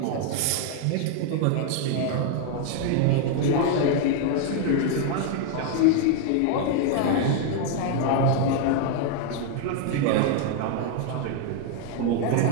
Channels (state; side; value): different; both; correlation 0.00